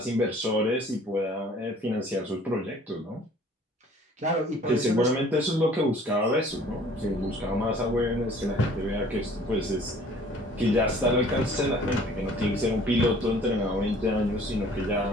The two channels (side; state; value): both; normal; correlation 0.53